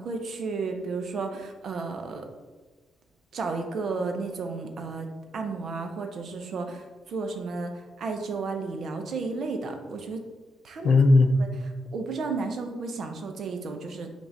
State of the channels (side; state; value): both; normal; correlation 0.81